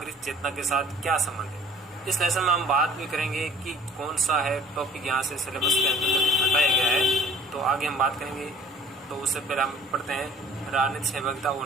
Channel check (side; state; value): both; normal; correlation 0.52